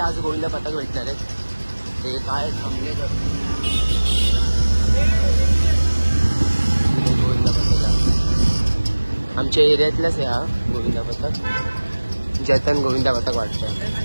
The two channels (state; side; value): inverted; both; correlation -1.00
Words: गोविंदा पथक भेटणार आहेत. ते काय थांबले गोविंदा पथक आमच्या एरियातलाच आहे हा गोविंदा पथक. जतन गोविंदा पथक वाटतं.